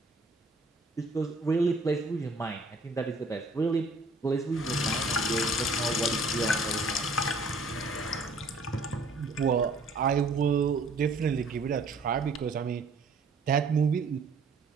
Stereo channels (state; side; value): quieter; left; 3.1 dB